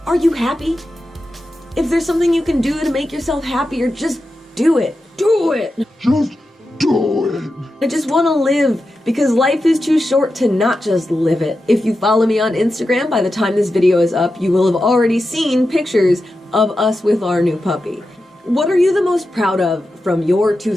are you happy? If there's something you can do to make yourself happier, just do it. Do it! Just do it! I just want to live, because life is too short to not just live it. If you follow me on Instagram, by the time this video is up, you will have already seen pictures of us with our new puppy. What are you the most proud of from your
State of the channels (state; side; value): normal; both; correlation 0.90